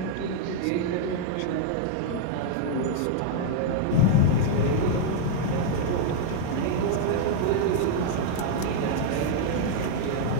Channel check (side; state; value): both; different; correlation 0.00